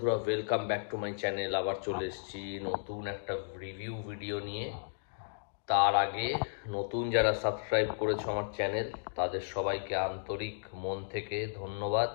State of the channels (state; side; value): silent; right; digital silence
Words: welcome back to my channel. আবার চলে এসেছি নতুন একটা রিভিউ ভিডিও নিয়ে। তার আগে নতুন যারা সাবস্ক্রাইব করেছো আমার চ্যানেল, তাদের সবাইকে আন্তরিক মন থেকে ধন্যবাদ।